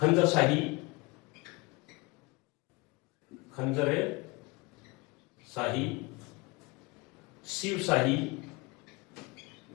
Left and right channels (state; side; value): quieter; right; 25.1 dB